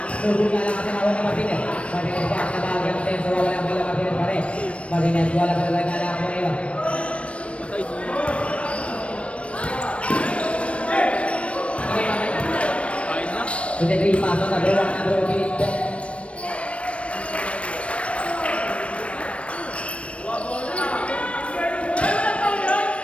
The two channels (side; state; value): right; late; 0.062 ms